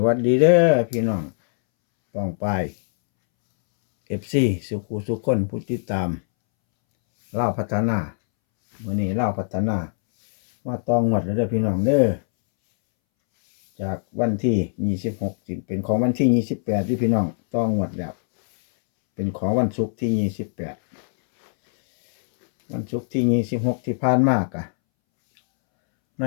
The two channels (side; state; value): right; silent; 64 dB below the other